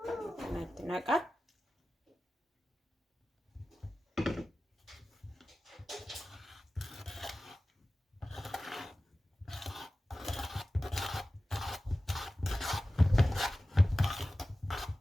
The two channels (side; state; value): both; normal; correlation 0.95